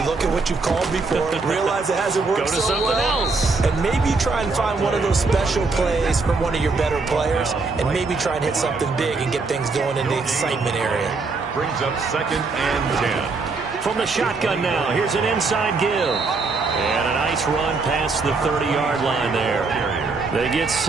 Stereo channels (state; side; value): quieter; left; 4.0 dB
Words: look at what you've called before, realize it hasn't worked so well. Go to something else. And maybe you try and find one of those special plays from one of your better players, and maybe try and hit something big and get things going in the excitement area. Brings up 2nd and 10. From the shotgun now, here's an inside give. And a nice run past the 30-yard line there. They get